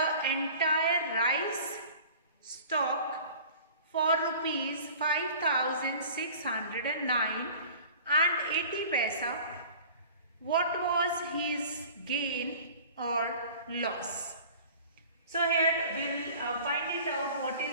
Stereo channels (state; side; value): inverted; both; correlation -0.44